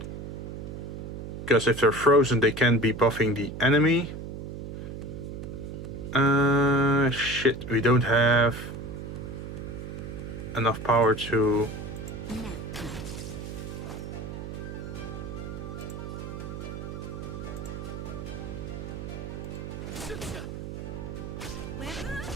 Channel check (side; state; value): right; noise; hum, 8 dB below the sound